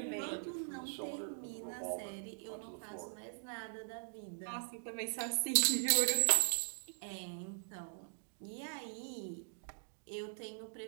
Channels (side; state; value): left; silent; digital silence